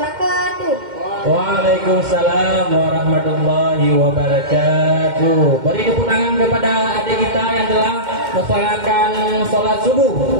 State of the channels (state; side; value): late; left; 2.1 ms